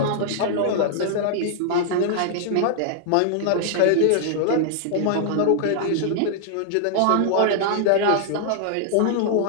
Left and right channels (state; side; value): different; both; correlation -0.01